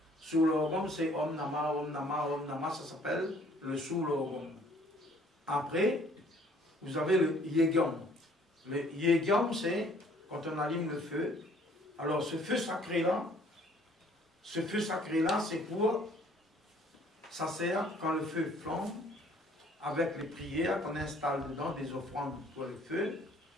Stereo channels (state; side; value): normal; both; correlation 0.58